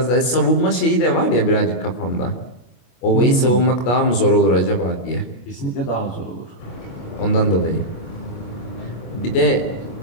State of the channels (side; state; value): right; late; 25 ms